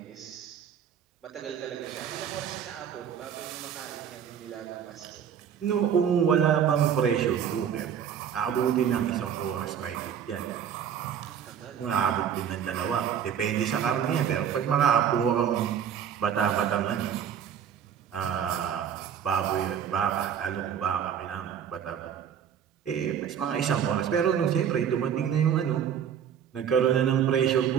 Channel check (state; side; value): quieter; left; 8.6 dB